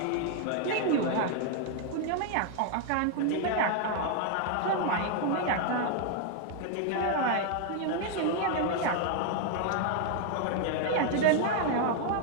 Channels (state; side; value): different; both; correlation 0.00